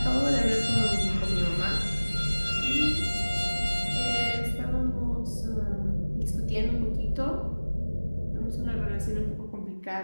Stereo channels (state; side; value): inverted; both; correlation -1.00